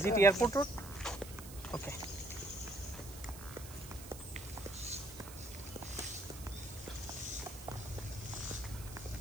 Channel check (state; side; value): noise; right; hiss, 14 dB below the sound